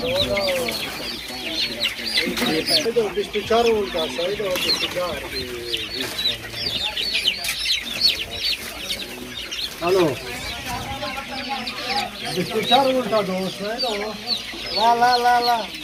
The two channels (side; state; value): both; identical; correlation 1.00